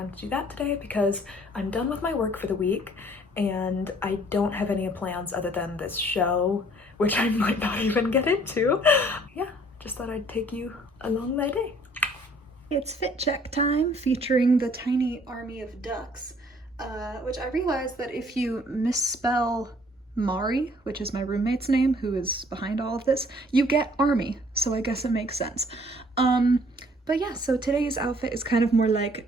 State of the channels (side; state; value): both; normal; correlation 0.58